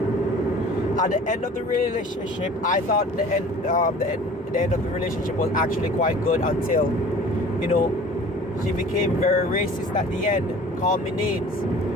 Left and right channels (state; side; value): normal; both; correlation 0.45